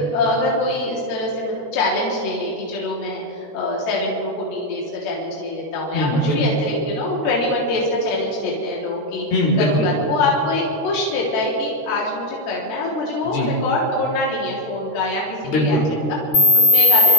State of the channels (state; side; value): late; right; 13 ms